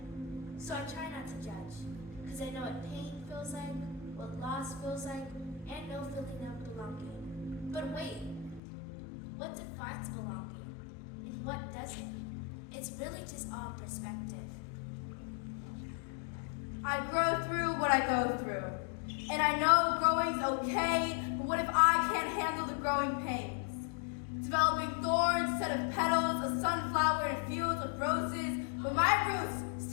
So I try not to judge, because I know what pain feels like, what loss feels like, and no feeling of belonging. But wait, what defines belonging? And what doesn't? It's really just all perspective. I grow through what I go through. And I know growing's okay, but what if I can't handle the growing pains? Developing thorns instead of petals, a sunflower in fields of roses, but my roots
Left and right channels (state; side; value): drops out; right; at 8.6 s